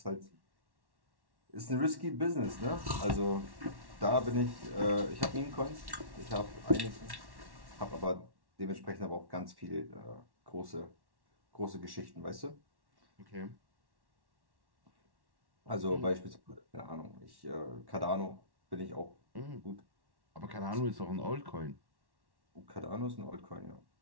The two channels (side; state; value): left; late; 1.1 ms